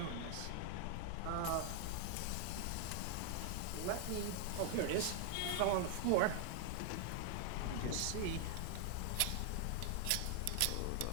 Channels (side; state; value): both; different; correlation 0.00